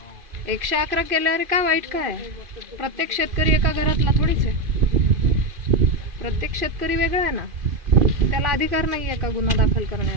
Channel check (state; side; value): late; left; 2.5 ms